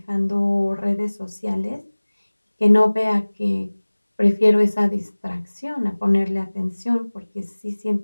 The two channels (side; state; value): both; inverted; correlation -1.00